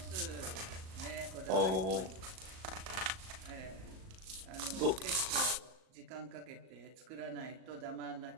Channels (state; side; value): late; left; 38 ms